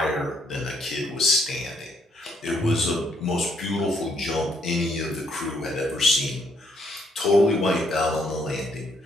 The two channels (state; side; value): normal; both; correlation 0.71